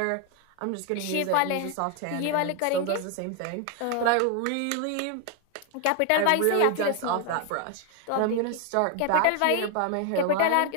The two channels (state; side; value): different; both; correlation 0.01